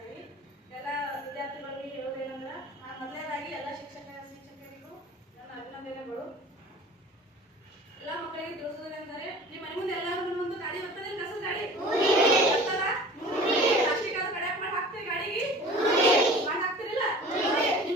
ಎಲ್ಲ ವಿದ್ಯಾರ್ಥಿಗಳಿಗೆ ಹೇಳೋದೇನಂದ್ರೆ ಮೊದಲನೇದಾಗಿ ಎಲ್ಲ ಶಿಕ್ಷಕರಿಗೂ ನನ್ನ ಅಭಿನಂದನೆಗಳು. ಎಲ್ಲ ಮಕ್ಕಳಿಗೆ ತಿಳಿಸೋದೇನೆಂದರೆ ನಿಮ್ಮ ಮನೆ ಮುಂದೆ ಎಲ್ಲರೂ ಒಂದು ಗಾಡಿ ಬರ್ತದೆ, ಕಸದ ಗಾಡಿ ಪ್ಲಾಸ್ಟಿಕ್ ಅದು ಕಡೆ ಮಾಡಿ ಹಾಕ್ತೀರಿ, ಗಾಡಿಗೆ ಮಾಡಿ ಹಾಕ್ತಿರಿಲ್ಲ?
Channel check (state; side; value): normal; both; correlation 0.42